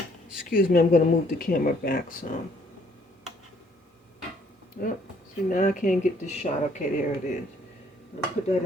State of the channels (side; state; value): both; normal; correlation 0.63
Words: Excuse me, I'm going to move the camera back some. Yep. See, now I can't get this shot. Okay, there it is. I'm going to put that